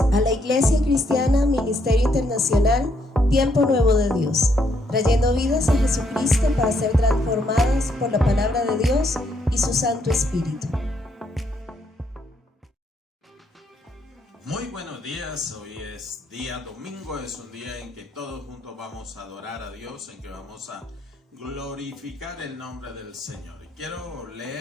la Iglesia Cristiana Ministerio Internacional Tiempo Nuevo de Dios, trayendo vidas a Jesucristo para ser transformadas por la palabra de Dios y su Santo Espíritu. Muy buenos días, hoy es día domingo, es un día en que todos juntos vamos a adorar a Dios, en que vamos a glorificar el nombre del Señor. Y quiero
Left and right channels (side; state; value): both; normal; correlation 0.73